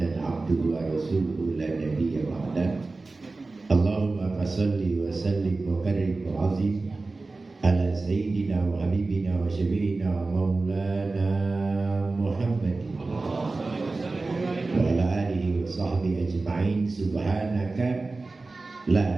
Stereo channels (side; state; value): left; quieter; 3.5 dB